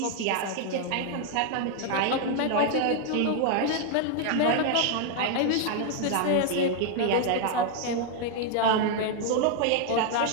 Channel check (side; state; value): both; different; correlation 0.00